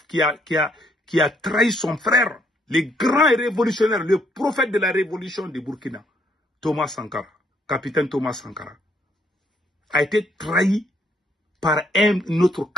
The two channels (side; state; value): both; normal; correlation 0.70